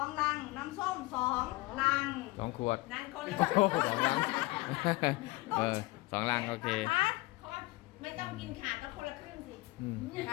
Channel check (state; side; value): quieter; right; 21.6 dB